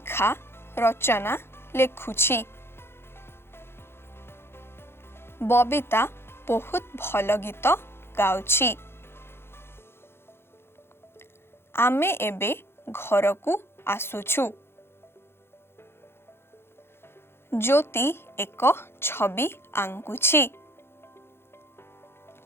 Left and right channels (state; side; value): late; right; 0.11 ms